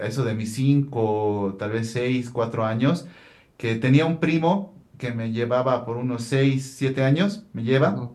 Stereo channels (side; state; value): both; identical; correlation 1.00